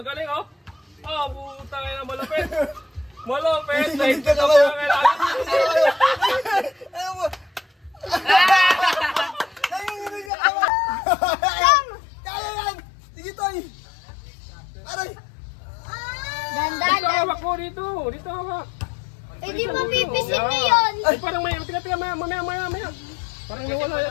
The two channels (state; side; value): drops out; right; at 10.3 s